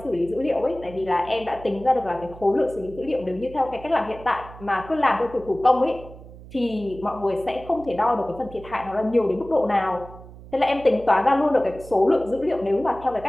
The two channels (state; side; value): noise; right; hum, 17 dB below the sound